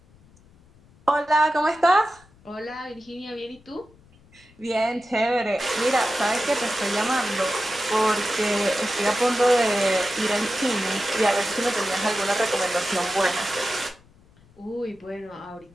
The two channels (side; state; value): left; noise; rumble, 28 dB below the sound